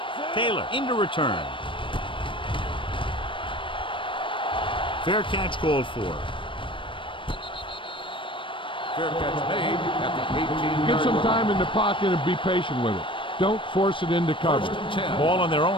Taylor into return. Fair catch called for. Fair catch made at the 18-yard Get some line. time in the pocket and be patient with it. Don't force it into cover. First and 10. Ball on their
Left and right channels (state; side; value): late; right; 0.25 ms